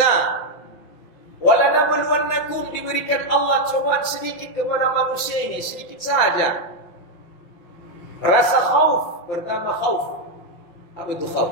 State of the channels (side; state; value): right; late; 5.9 ms